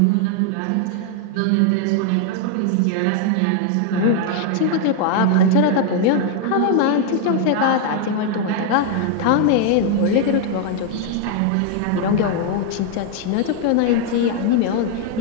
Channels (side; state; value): both; different; correlation 0.00